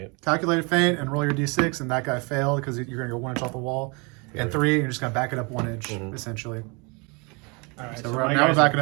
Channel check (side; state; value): left; quieter; 30.4 dB